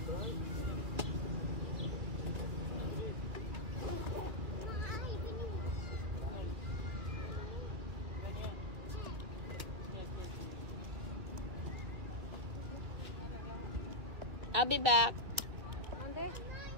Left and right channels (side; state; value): left; late; 2.6 ms